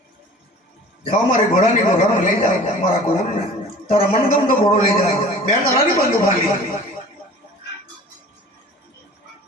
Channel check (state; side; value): normal; both; correlation 0.44